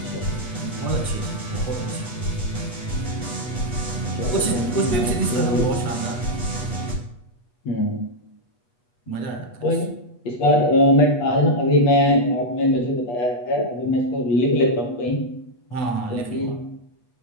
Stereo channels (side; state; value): right; late; 8.3 ms